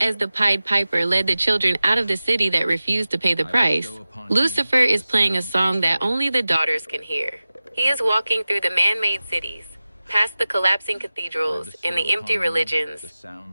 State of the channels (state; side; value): inverted; both; correlation -0.96